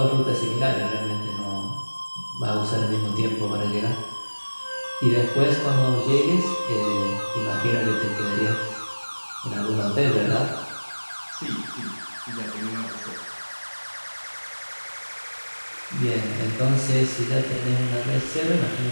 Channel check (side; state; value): both; inverted; correlation -1.00